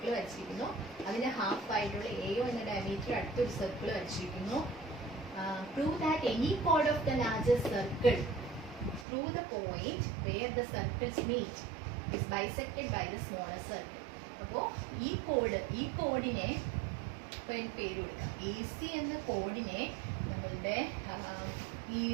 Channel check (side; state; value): left; drops out; at 9.1 s